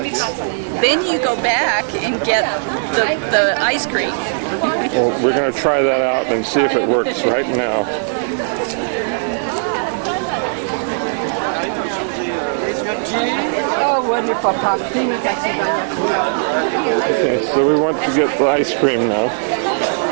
Then you go back and get the ice cream. Well, we're going to try that out and see if it works right now. Oh, wonderful. Okay, so we want to get the ice cream now.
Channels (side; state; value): left; silent; 68 dB below the other